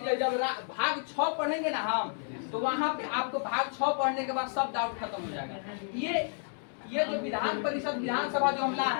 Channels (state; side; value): silent; right; 57 dB below the other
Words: जब भाग 6 पढ़ेंगे ना हम तो वहाँ पे आपको भाग 6 पढ़ने के बाद सब डाउट खत्म हो जाएगा। ये जो विधान परिषद विधानसभा जो हम